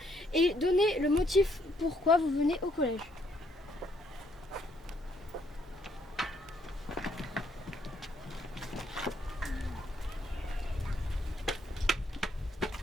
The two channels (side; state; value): both; normal; correlation 0.70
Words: et donner le motif pourquoi vous venez au collège.